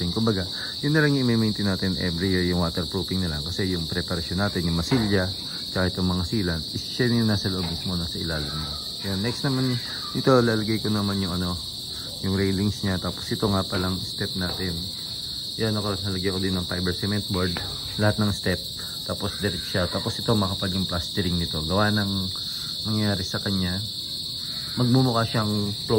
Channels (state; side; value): identical; both; correlation 1.00